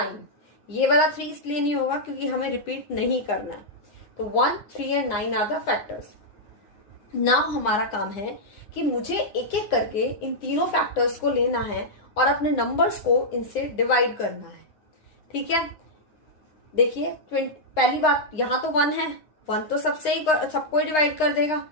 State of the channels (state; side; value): late; right; 9.7 ms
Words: ये वाला 3 इसलिए नहीं होगा क्योंकि हमें रिपीट नहीं करना है। तो 1 3 and 9 are the factors. Now हमारा काम है कि मुझे एक एक करके इन तीनों फैक्टर्स को लेना है और अपने नंबर्स को इनसे डिवाइड करना है, ठीक है। देखिए पहली बात, यहां तो 1 है, 1 तो सबको डिवाइड कर देगा,